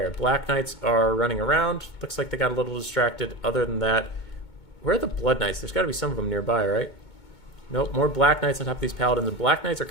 Black Knights are running around. Looks like they got a little distracted. Other than that, where are the Blood Knights? There's got to be some of them nearby, right? Nope, more Black Knights on top of these Paladins. And Black Knights are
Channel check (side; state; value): right; late; 2.2 ms